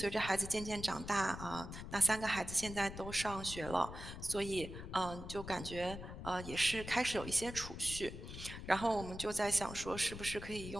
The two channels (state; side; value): noise; left; rumble, 10 dB below the sound